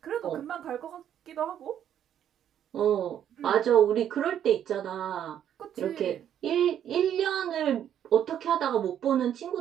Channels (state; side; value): quieter; left; 10.0 dB